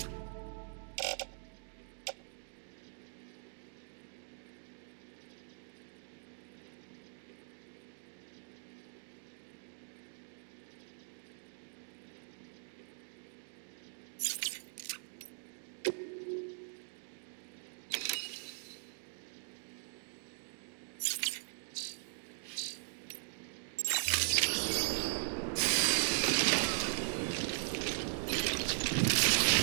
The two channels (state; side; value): silent; left; digital silence